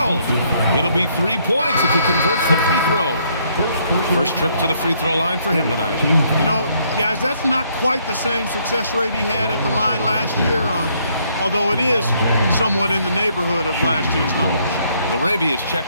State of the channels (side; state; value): both; inverted; correlation -0.69